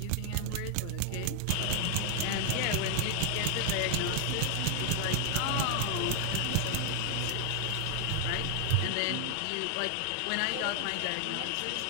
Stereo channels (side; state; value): both; different; correlation 0.00